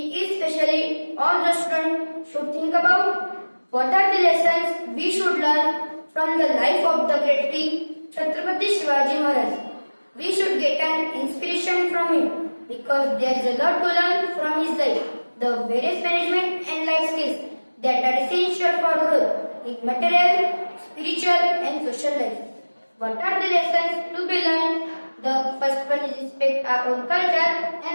especially all the students should think about? What are the lessons we should learn from the life of the great king Chhatrapati Shivaji Maharaj? We should get an inspiration from him because there is a lot to learn from his life. The various management and life skills that are essential for growth in material, spiritual and social life. What are the lessons to be learned? The first one is respect our own culture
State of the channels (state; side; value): inverted; both; correlation -1.00